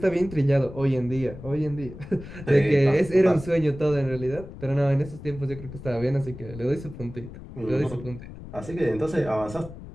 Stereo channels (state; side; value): noise; left; rumble, 14 dB below the sound